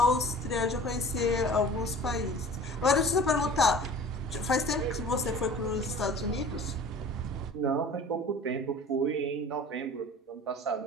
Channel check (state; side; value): normal; both; correlation 0.43